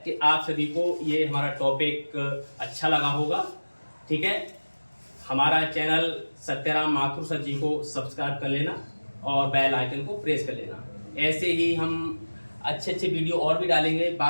कि आप सभी को ये हमारा टॉपिक अच्छा लगा होगा। ठीक है, हमारा चैनल सत्यराम माथुर सर जी को सब्सक्राइब कर लेना और बेल आइकन को प्रेस कर लेना। ऐसे ही हम अच्छे अच्छे वीडियो और भी डालेंगे।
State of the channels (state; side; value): inverted; both; correlation -1.00